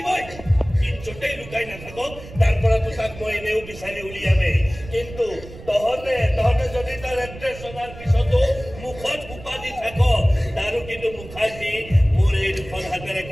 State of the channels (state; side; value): noise; right; rumble, 15 dB below the sound